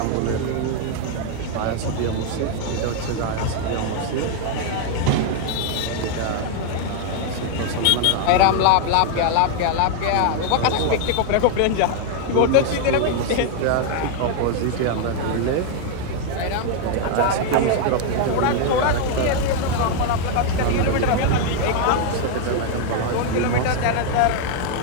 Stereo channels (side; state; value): both; different; correlation 0.00